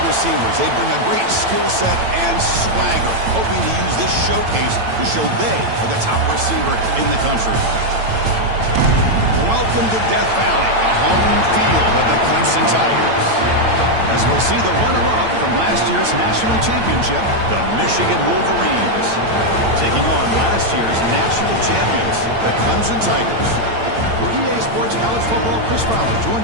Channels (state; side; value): late; left; 8.9 ms